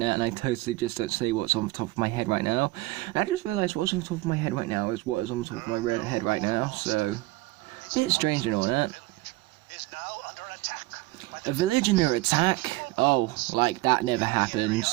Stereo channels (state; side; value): quieter; left; 19.6 dB